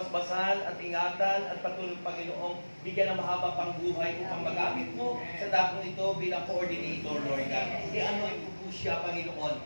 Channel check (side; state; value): both; inverted; correlation -1.00